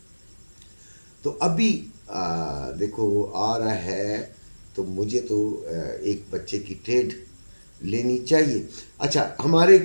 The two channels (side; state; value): both; inverted; correlation -1.00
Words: तो अभी देखो आ रहा है, तो मुझे तो एक बच्चे की ट्रेड लेनी चाहिए। अच्छा, हमारे